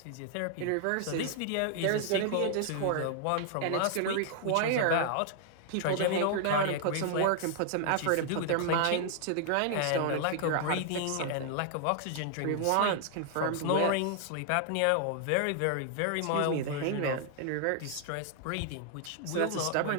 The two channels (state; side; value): different; both; correlation 0.00